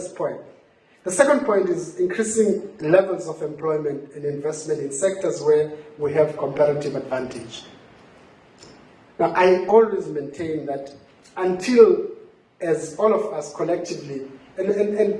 point. The second point is increasing levels of employment and investment in sectors where we have comparative advantage. Now, I always maintain that until, as all of us collectively, and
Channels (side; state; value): both; identical; correlation 1.00